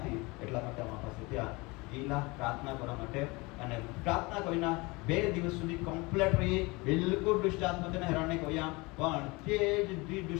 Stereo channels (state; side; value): quieter; right; 25.0 dB